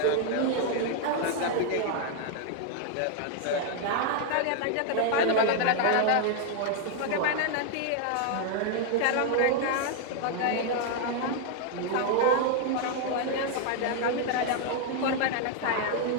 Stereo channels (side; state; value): both; different; correlation 0.00